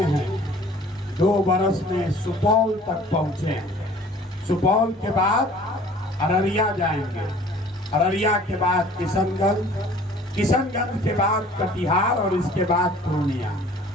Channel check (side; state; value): both; normal; correlation 0.50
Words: हैं, 2 बरस में सुपौल तक पहुंचे हैं। सुपौल के बाद अररिया जाएंगे, अररिया के बाद किशनगंज के बाद कटिहार और इसके बाद पूर्णिया।